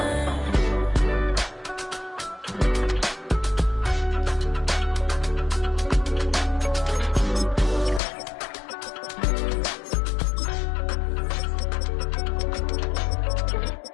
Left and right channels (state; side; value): drops out; right; at 8.0 s